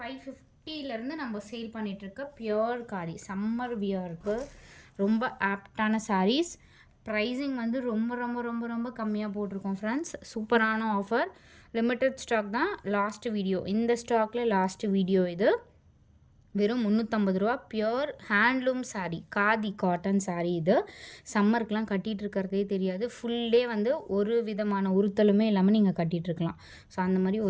550 நம்ம சேல் பண்ணிகிட்ருக்க பியோர் காதி சம்மர் வியருக்கு ரொம்ப ஆப்டான சாரீஸ். ப்ரைஸிங் வந்து ரொம்ப ரொம்ப ரொம்ப ரொம்ப கம்மியாக போட்டிருக்கோம் ஃப்ரெண்ட்ஸ். சூப்பரான ஆஃபர், லிமிட்டட் ஸ்டாக் தான். லாஸ்ட் வீடியோ, இந்த ஸ்டாக்கில் லாஸ்ட் வீடியோ இது. வெறும் 350 ரூபா. Pure handloom sari, khadi cotton sari. இது சம்மருக்கெலாம் கட்டிகிட்டு இருக்கிறதே தெரியாது. ஃபுல் டே வந்து ஒரு விதமான உறுத்தலுமே இல்லாமல் நீங்கள் கட்டிகிட்ருக்கலாம். ஸோ அந்த மாதிரி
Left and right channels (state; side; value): identical; both; correlation 1.00